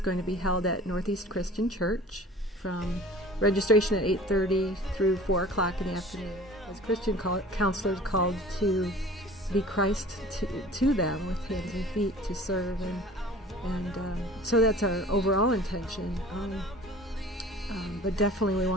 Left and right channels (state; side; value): normal; both; correlation 0.44